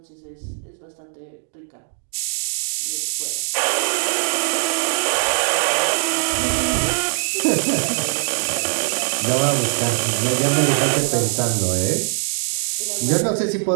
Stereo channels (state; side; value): silent; left; digital silence